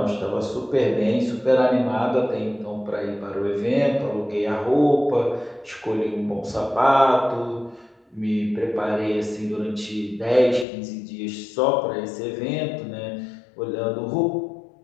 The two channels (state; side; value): drops out; right; at 10.7 s